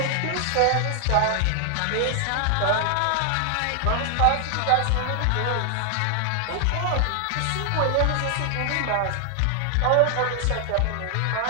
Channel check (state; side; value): different; both; correlation 0.00